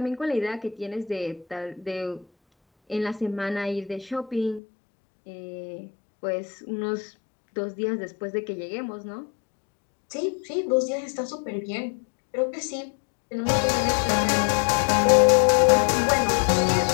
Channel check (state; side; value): drops out; right; at 4.6 s